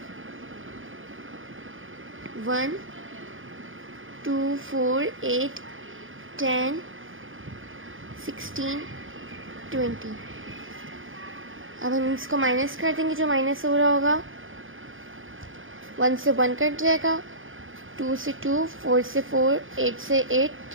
1 2 4 8 10 16 20। अब हम इसको माइनस कर देंगे, जो माइनस हो रहा होगा 1 से 1 कट जाएगा, 2 से 2, 4 से 4, 8 से 8,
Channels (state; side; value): late; left; 0.58 ms